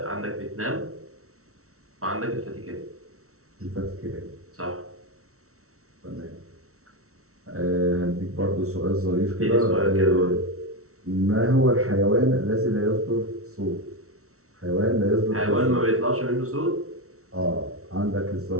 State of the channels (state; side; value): late; left; 0.63 ms